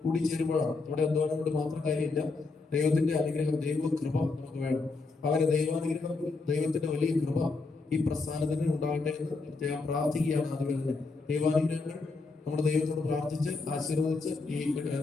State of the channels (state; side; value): quieter; right; 3.9 dB